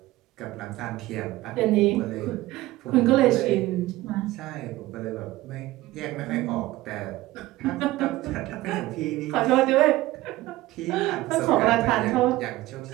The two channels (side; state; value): left; quieter; 17.7 dB